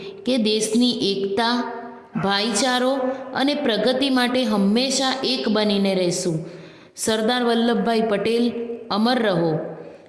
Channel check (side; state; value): both; identical; correlation 1.00